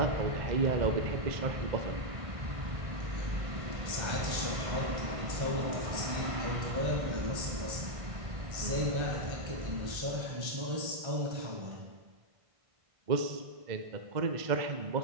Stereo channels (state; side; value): late; left; 1.5 ms